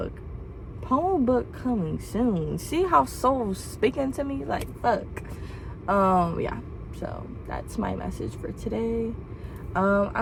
Poem book coming soon. See how soul's speaking to me? Like, fuck. Yeah, so that's my message for today.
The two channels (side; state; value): both; identical; correlation 1.00